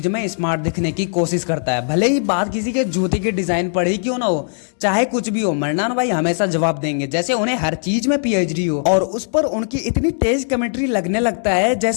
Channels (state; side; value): silent; right; digital silence